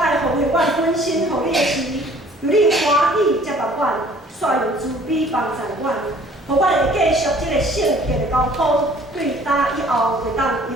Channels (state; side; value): normal; both; correlation 0.54